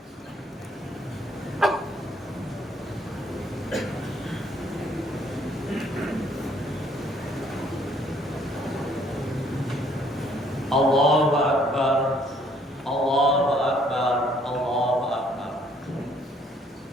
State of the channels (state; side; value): normal; both; correlation 0.64